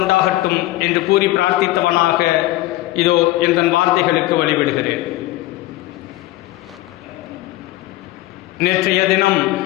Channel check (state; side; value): quieter; right; 17.0 dB